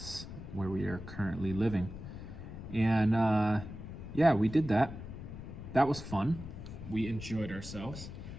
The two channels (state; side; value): noise; left; rumble, 10 dB below the sound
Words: where we are currently living. And yeah, we did that. That was fun. We enjoyed ourselves.